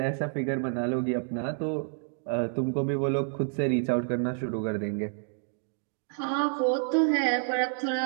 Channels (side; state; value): left; silent; digital silence